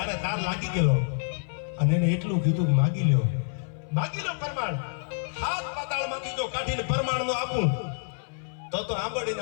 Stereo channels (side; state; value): right; silent; 58 dB below the other